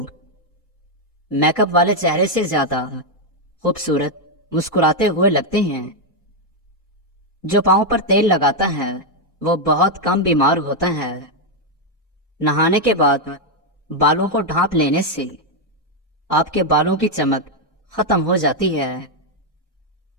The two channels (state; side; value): normal; both; correlation 0.01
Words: میک اپ والے چہرے سے زیادہ خوبصورت مسکراتے ہوئے لگتے ہیں۔ جو پاؤں پر تیل لگاتا ہے وہ بہت کم بیمار ہوتا ہے۔ نہانے کے بعد بالوں کو ڈھانپ لینے سے آپ کے بالوں کی چمک ختم ہو جاتی ہے۔